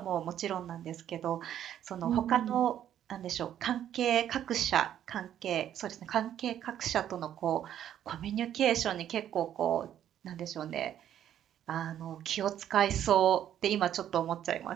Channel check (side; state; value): left; quieter; 10.7 dB